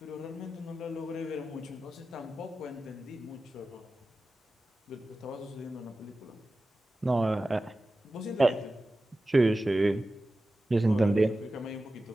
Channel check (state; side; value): normal; both; correlation 0.95